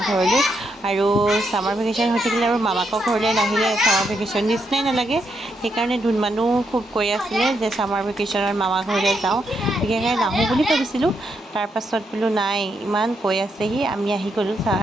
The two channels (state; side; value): normal; both; correlation 0.79